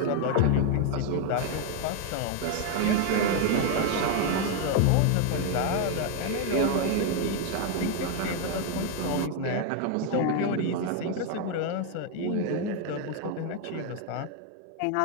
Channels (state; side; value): different; both; correlation 0.01